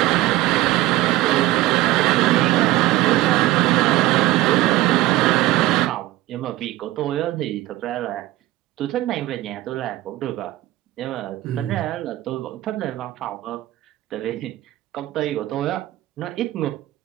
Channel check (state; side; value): quieter; left; 17.0 dB